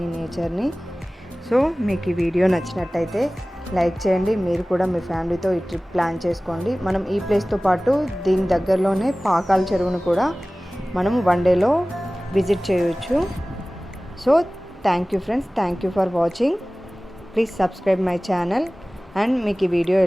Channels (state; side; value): normal; both; correlation 0.98